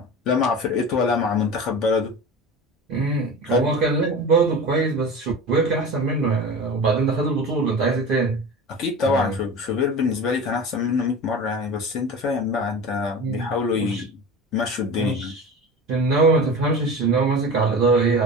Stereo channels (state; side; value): normal; both; correlation 0.32